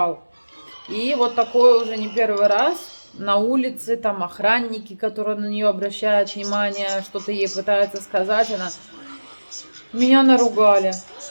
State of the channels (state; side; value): inverted; both; correlation -1.00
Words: И вот такое уже не первый раз. На улице там охранники, которые на нее обращают внимание, что-то ей пытаются сказать. Она: меня наругали,